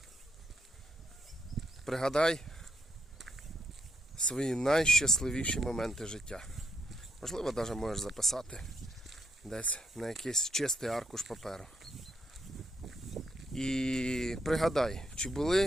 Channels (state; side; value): normal; both; correlation 0.78